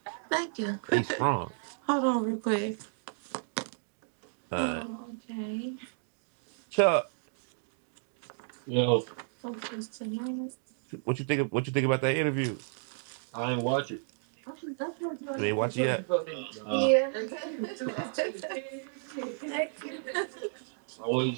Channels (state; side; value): silent; left; digital silence